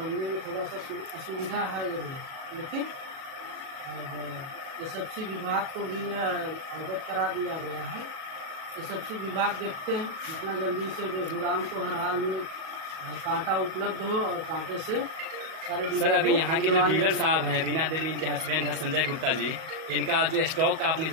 में थोड़ा सा असुविधा है जरूर, लेकिन अब एसएफसी विभाग को भी अवगत करा दिया गया है। एसएफसी विभाग देखते हैं जितना जल्दी से गोदाम को हर हाल में कांटा उपलब्ध हो और कांटे से सारे। सर, अभी यहाँ के जो डीलर साहब हैं, रीना देवी इनके हस्बैंड है संजय गुप्ता जी, इनका जो स्टॉक का आपने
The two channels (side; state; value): left; late; 37 ms